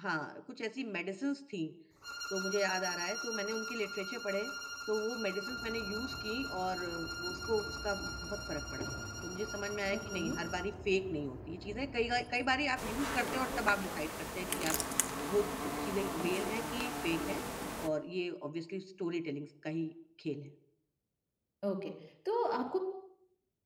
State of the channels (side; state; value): both; identical; correlation 1.00